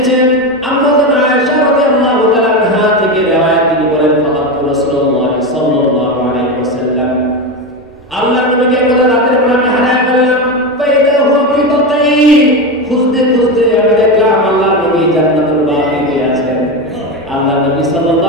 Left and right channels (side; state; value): both; normal; correlation 0.17